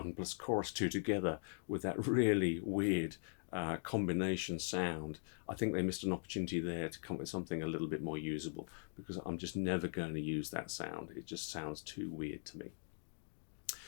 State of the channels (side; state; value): right; silent; digital silence